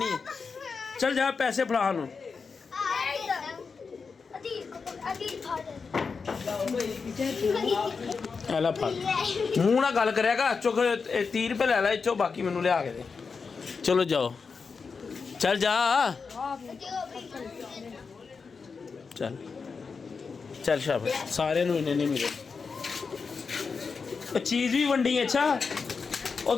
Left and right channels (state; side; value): quieter; right; 5.1 dB